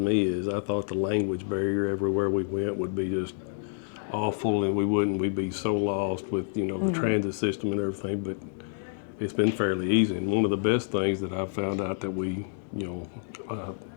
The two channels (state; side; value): silent; right; digital silence